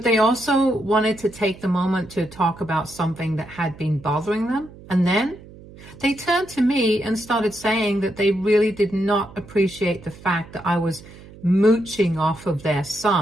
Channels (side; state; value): right; noise; hum, 19 dB below the sound